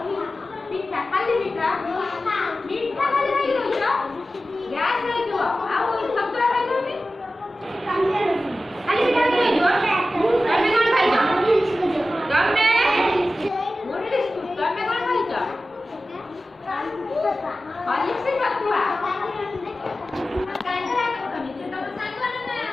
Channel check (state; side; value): normal; both; correlation 0.94